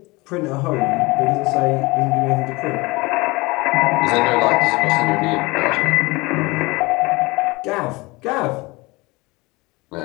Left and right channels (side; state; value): right; quieter; 23.7 dB